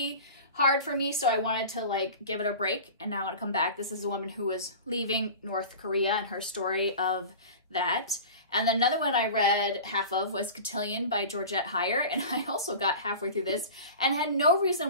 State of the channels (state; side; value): inverted; both; correlation -0.35